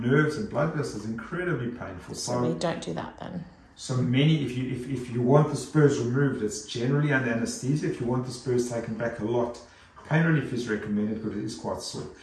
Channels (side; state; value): both; identical; correlation 1.00